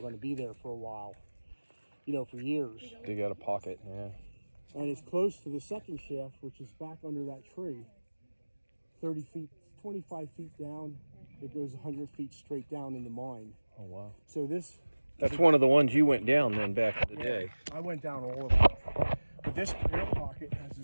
going to be there for a while. You know, for years. Dig out a pocket, yeah. And it's close to the second shaft, which is back under that tree. 30 feet, 25 feet down, it goes 100 feet straight down in the mine. Oh, wow. So this... That's one of the ones you went down then back in the day. I went down all of them. But this air pocket has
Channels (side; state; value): both; inverted; correlation -1.00